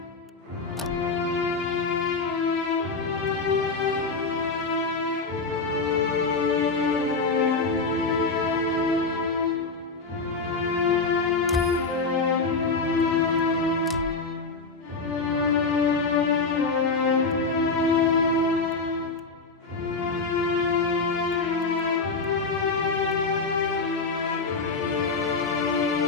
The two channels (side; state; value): right; quieter; 4.1 dB